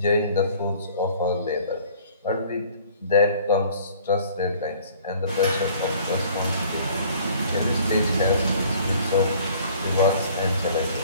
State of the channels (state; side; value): inverted; both; correlation -0.53